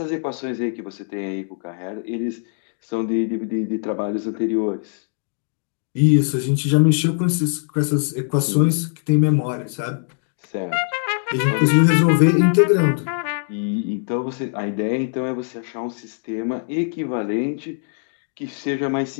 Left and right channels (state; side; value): silent; right; digital silence